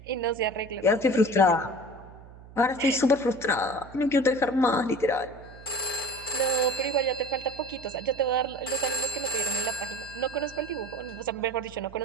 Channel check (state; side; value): noise; right; hum, 19 dB below the sound